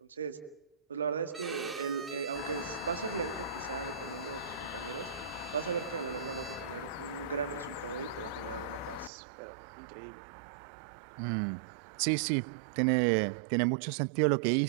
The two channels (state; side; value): drops out; left; at 9.1 s